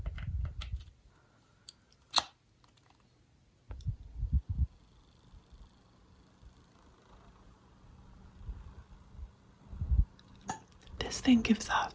This thing gives off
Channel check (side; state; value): both; identical; correlation 1.00